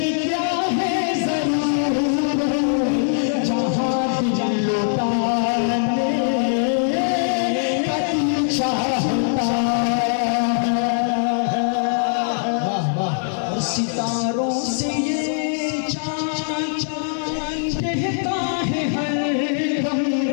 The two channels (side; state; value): right; silent; digital silence